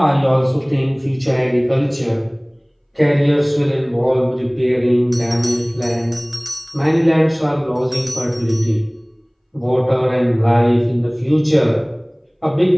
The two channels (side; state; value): both; identical; correlation 1.00